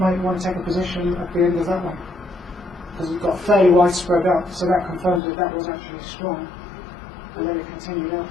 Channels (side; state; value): right; drops out; at 5.2 s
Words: want to take a position at the end of that one, because it's got fairly wide spread up, so that confirms that was actually strong, and then it continued up